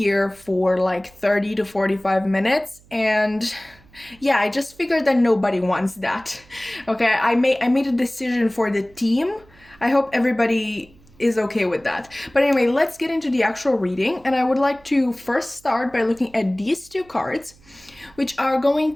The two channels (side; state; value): right; noise; hum, 27 dB below the sound